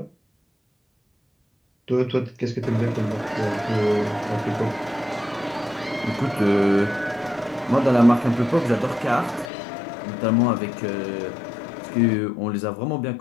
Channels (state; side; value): drops out; right; at 9.5 s